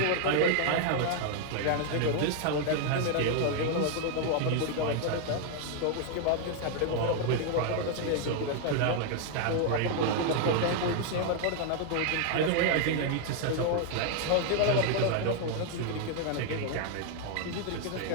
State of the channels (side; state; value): both; different; correlation 0.00